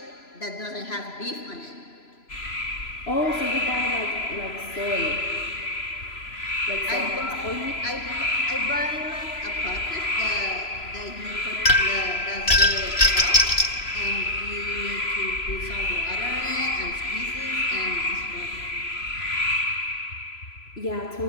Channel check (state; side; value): late; right; 3.0 ms